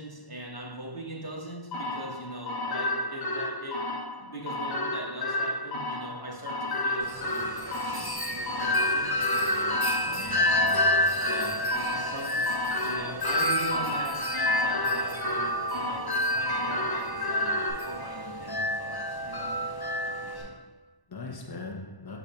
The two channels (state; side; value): late; right; 1.0 ms